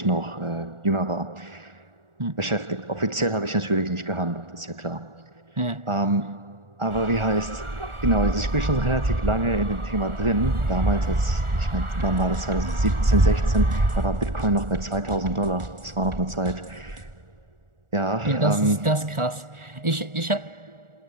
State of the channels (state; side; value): late; left; 1.4 ms